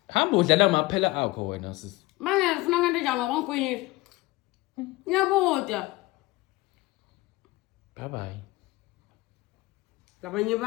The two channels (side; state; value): right; quieter; 20.4 dB